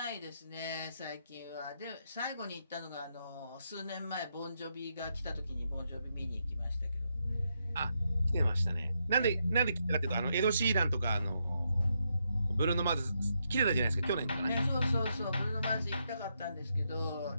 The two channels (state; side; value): inverted; both; correlation -0.80